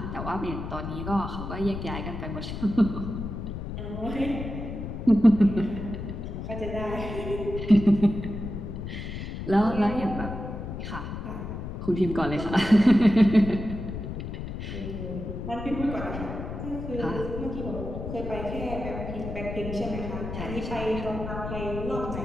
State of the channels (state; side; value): noise; left; rumble, 6 dB below the sound